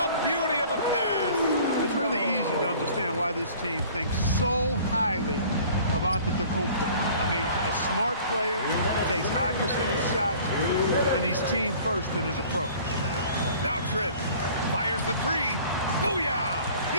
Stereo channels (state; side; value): inverted; both; correlation -0.49